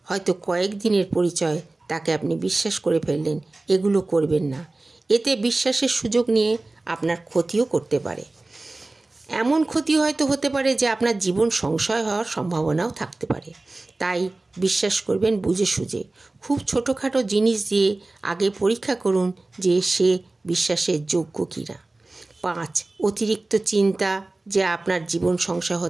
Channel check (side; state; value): left; quieter; 3.0 dB